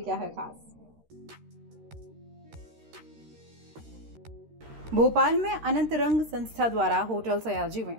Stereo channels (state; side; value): late; left; 13 ms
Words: है खास। भोपाल में अनंत रंग संस्था द्वारा होटल सयाजी में